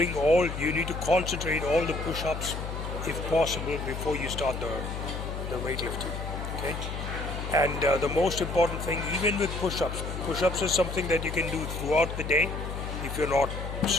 need to concentrate all the push-ups, if possible, before you start the weightlifting. Okay? And the most important thing, even with push-ups is something that you can do throughout the day if you're not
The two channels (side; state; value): left; noise; hum, 6 dB below the sound